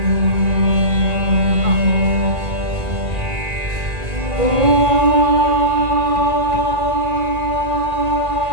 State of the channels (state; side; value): late; left; 1.9 ms